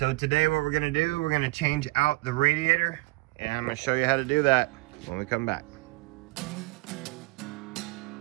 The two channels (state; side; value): quieter; left; 23.5 dB